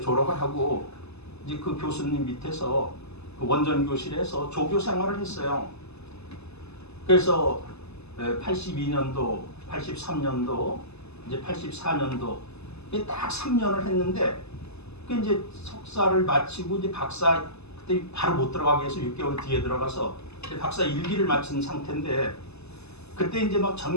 졸업을 하고 이제 그 교수님 밑에서 그 원전 교실에서 조교 생활을 했어요. 그래서 82년도, 83년도, 이제 84년도 딱 3년을 했는데 그 이제 석사를 마치고 이제 박사 그때 바로 못 들어가게 해서 6개월 뒤에 들어가서 이제 박사 1기를 마친 상태인데 그때 이제 막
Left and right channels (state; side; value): late; right; 0.80 ms